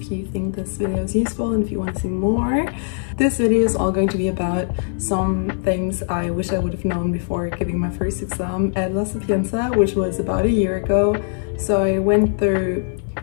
you think this video is useful and if you want to see more. This video is all going to be about some things I wish I would have known before giving my first exam at La Sapienza, which was about a year ago. So I went through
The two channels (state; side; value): silent; right; 58 dB below the other